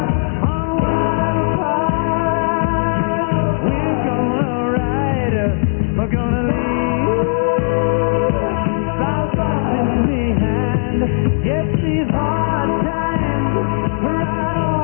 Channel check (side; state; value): right; silent; digital silence